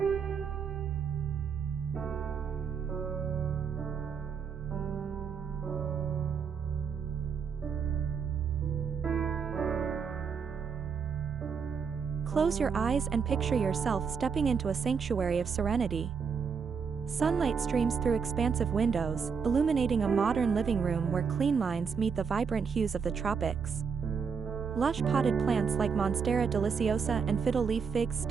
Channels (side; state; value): left; quieter; 6.1 dB